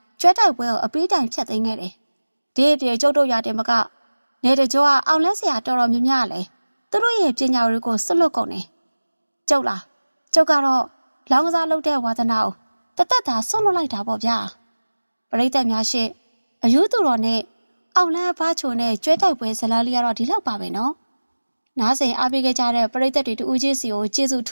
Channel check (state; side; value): inverted; both; correlation -1.00